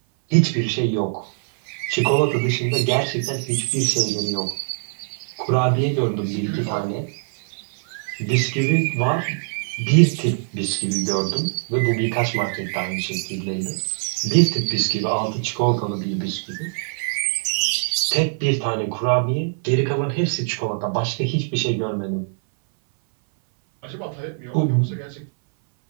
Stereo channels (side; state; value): left; silent; 60 dB below the other